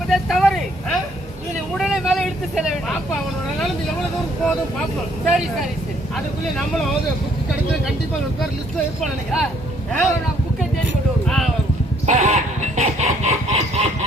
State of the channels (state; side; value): normal; both; correlation 0.64